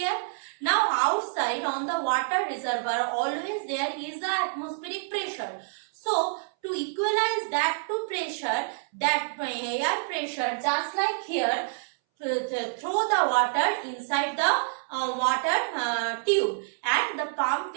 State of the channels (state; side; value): silent; left; 60 dB below the other